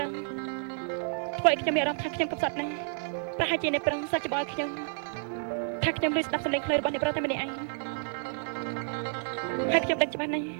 រុសធ្វើឲ្យខ្ញុំមានអារម្មណ៍ថាខ្ញុំកំសត់ណាស់ប្រហែលជាអ្នកប្រុសសាច់ច្បល់ខ្ញុំថាខ្ញុំលឺស្ដាប់សំឡេងខ្លាចរបស់អ្នកប្រុសតែម្នាក់ឯងហើយខ្ញុំដឹងច្បាស់ណាស់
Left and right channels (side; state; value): left; silent; digital silence